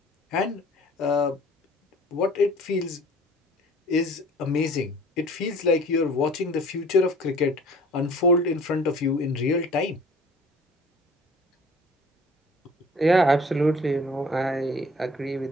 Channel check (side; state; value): both; normal; correlation 0.49